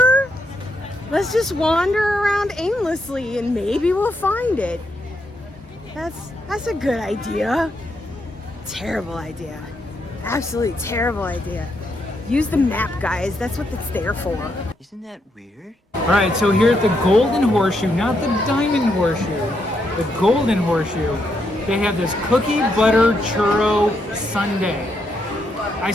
Let's just wander around aimlessly and maybe we'll find it. That's a good idea. Terrible idea. Absolutely terrible idea. Use the map, guys. That's what it's there for. Isn't that weird? All right, so here at the Golden Horseshoe, not the Diamond Horseshoe, the Golden Horseshoe, they have this cookie butter churro sundae. I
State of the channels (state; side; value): normal; both; correlation 0.79